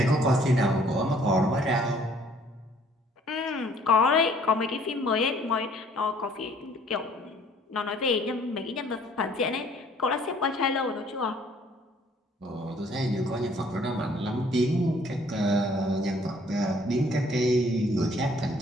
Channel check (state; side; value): normal; both; correlation 0.59